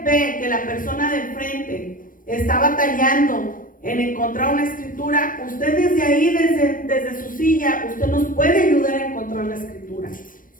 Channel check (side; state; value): right; late; 0.40 ms